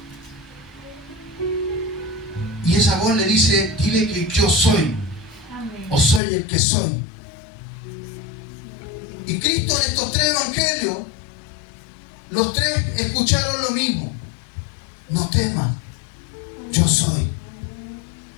Y esa voz le dice, dile que yo soy, o soy el que soy. Y Cristo en estos tres evangelios, los tres escucharon lo mismo. No teman, yo soy.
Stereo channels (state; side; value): drops out; right; at 6.2 s